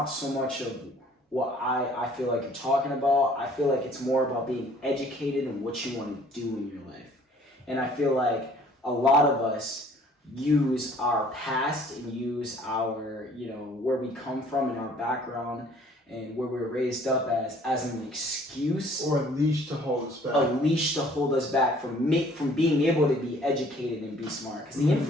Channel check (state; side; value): normal; both; correlation 0.56